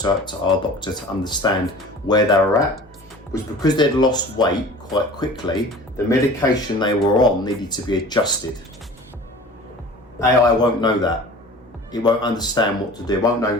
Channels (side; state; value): both; normal; correlation 0.42